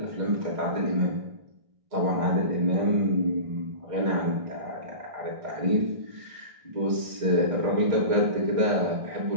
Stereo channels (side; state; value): left; late; 1.6 ms